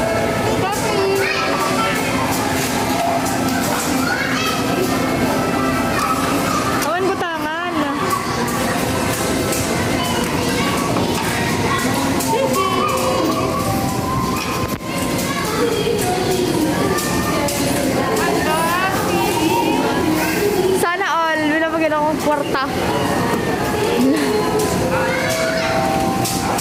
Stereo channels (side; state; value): both; identical; correlation 1.00